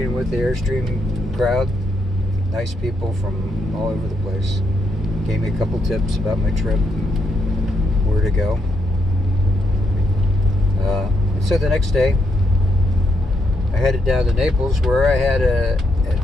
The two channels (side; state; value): both; normal; correlation 0.78